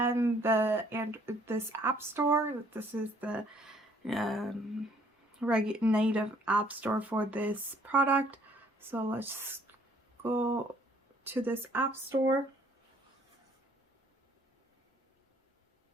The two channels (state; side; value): normal; both; correlation 0.62